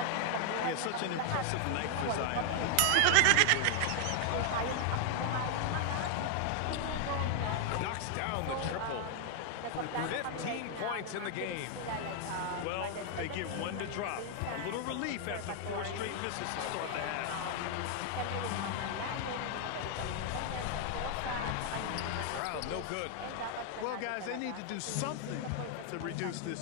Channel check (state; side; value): different; both; correlation 0.00